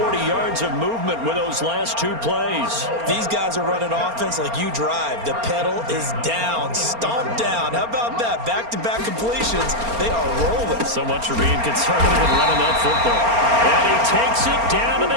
yards of movement with those last 2 plays. These guys are running offense like you drive. The pedal is down, stomped down. How about that? Back-to-back completions. They are rolling. So much for being conservative and running that football. And he takes it down to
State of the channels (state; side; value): late; left; 4.3 ms